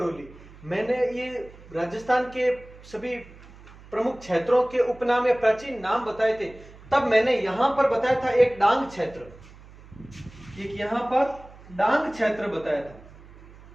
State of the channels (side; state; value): right; noise; hum, 21 dB below the sound